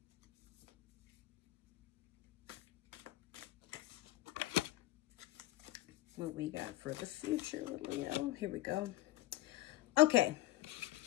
What we got for the future with Leo. Here we go. Okay.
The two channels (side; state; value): right; quieter; 16.3 dB